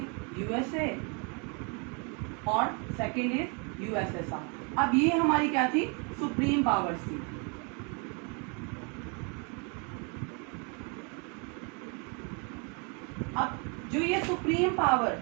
USA और सेकेंड इज यूएसएसआर। अब ये हमारी क्या थी? सुप्रीम पावर्स थी। अब जो ये सुप्रीम पावर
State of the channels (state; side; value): quieter; left; 34.8 dB